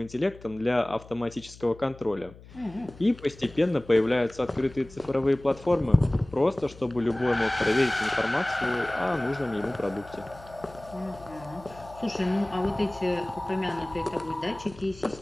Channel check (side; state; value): left; noise; hum, 20 dB below the sound